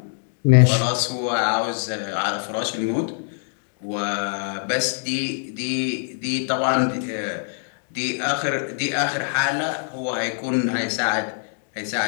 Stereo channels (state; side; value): silent; right; digital silence